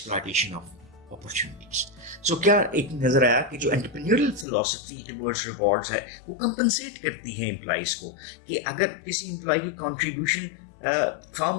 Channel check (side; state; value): right; drops out; at 4.5 s